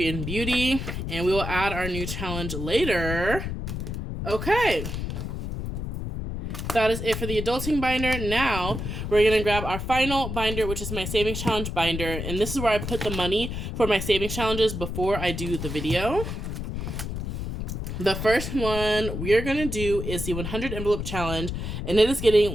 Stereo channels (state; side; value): noise; left; rumble, 5 dB below the sound